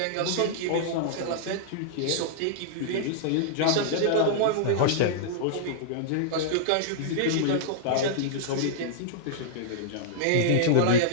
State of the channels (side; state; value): both; different; correlation -0.01